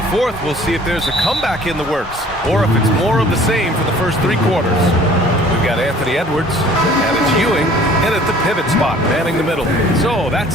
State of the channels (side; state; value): both; normal; correlation 0.52